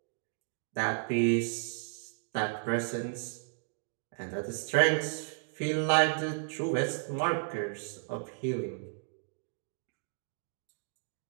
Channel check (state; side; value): silent; left; digital silence